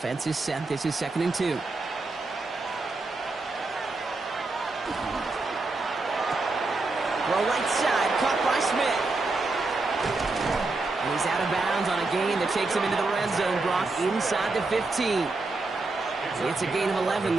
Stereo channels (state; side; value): quieter; left; 3.4 dB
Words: is set. This is 2nd and 2. Throw right side, caught by Smith. And he's out of bounds on a gain that takes him into the red zone, Brock, inside the 15. It's a gain of 11